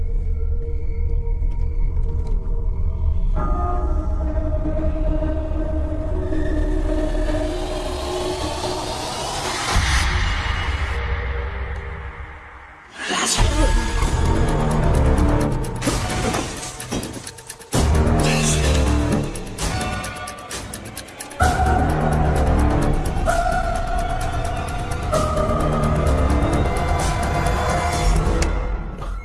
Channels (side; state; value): both; identical; correlation 1.00